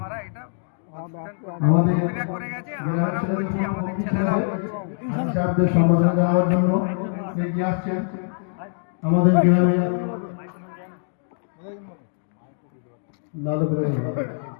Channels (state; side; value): silent; right; digital silence